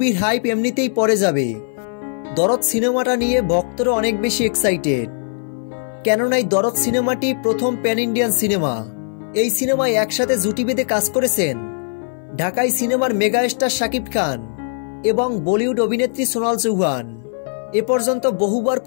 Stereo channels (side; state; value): right; silent; 58 dB below the other